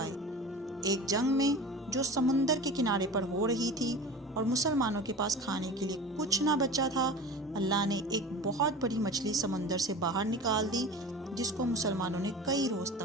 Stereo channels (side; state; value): both; normal; correlation 0.35